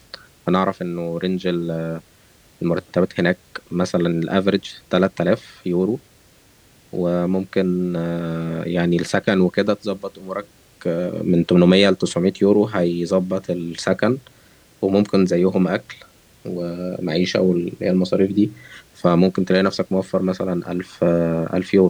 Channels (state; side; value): identical; both; correlation 1.00